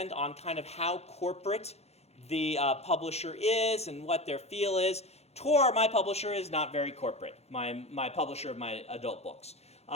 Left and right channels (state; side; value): late; right; 0.31 ms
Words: on kind of how corporate the publisher is and what their feel is. Tor, my publisher, is not very corporate, my publisher of my adult books.